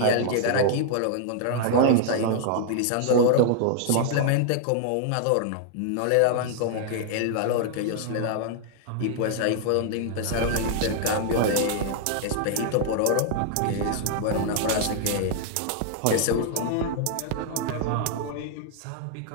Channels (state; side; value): different; both; correlation -0.01